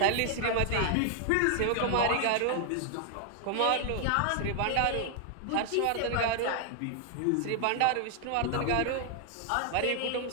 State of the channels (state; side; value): different; both; correlation 0.00